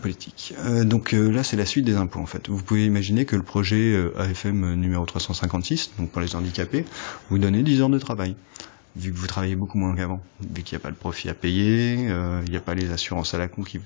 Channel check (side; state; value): right; silent; 63 dB below the other